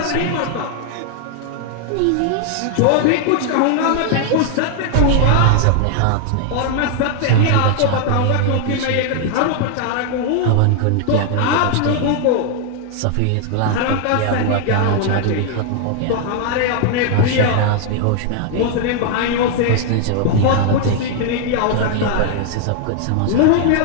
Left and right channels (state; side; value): different; both; correlation 0.00